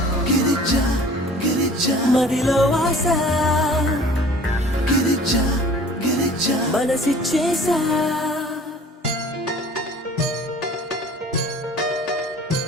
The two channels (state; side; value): normal; both; correlation 0.47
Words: మదిలో వాస మనసిచ్చేసా